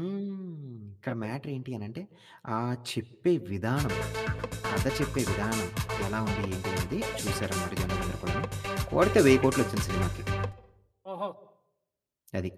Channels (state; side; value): identical; both; correlation 1.00